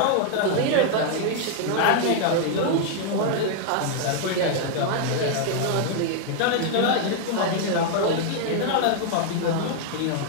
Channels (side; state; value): both; different; correlation 0.00